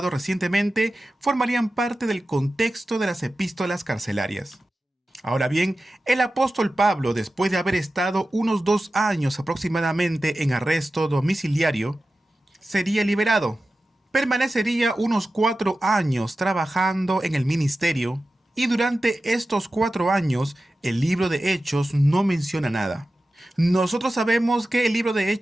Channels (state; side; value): normal; both; correlation 0.94